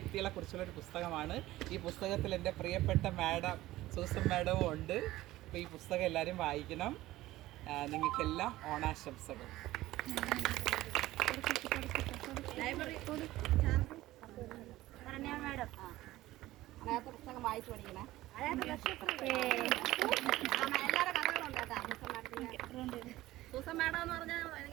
കുറിച്ചുള്ള ഒരു പുസ്തകമാണ്. ഈ പുസ്തകത്തിൽ എൻ്റെ പ്രിയപ്പെട്ട മാഡം സൂസൻ മാഡവും ഉണ്ട്. അപ്പോൾ ഈ പുസ്തകം എല്ലാവരും വായിക്കണം. നിങ്ങൾക്കെല്ലാം ഓണാശംസകൾ. അതിനകത്ത് പുസ്തകം വായിച്ചു പഠിക്കണേ. എല്ലാവരുടെ കഥകളുണ്ട് കേട്ടോ. സൂസൻ മാഡം എന്ന് പറഞ്ഞാൽ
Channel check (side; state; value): left; quieter; 16.6 dB